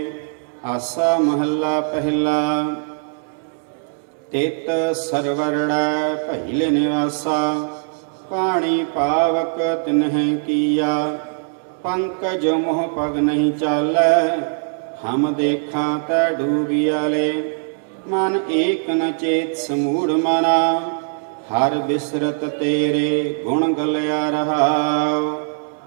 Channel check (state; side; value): silent; left; digital silence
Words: ਆਸਾ ਮਹੱਲਾ ਪਹਿਲਾ। ਤਿਤ ਸਰਵਰੜੈ ਪਹਿਲੇ ਨਿਵਾਸਾ, ਪਾਣੀ ਪਾਵਕ ਤਿਨਹਿ ਕੀਆ। ਪੰਕਜ ਮੋਹ ਪਗ ਨਹੀਂ ਚਾਲੈ, ਹਮ ਦੇਖਾਂ ਤੈ ਡੂਬਿਆਲੇ। ਮਨ ਏਕ ਨ ਚੇਤ ਸਮੂੜ ਮਨਾ, ਹਰ ਬਿਸਰਤ ਤੇਰੇ ਗੁਣ ਗਲਿਆ ਰਹਾਉ।